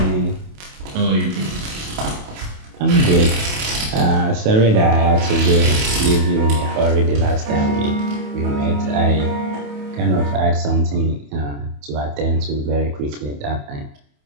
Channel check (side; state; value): left; late; 28 ms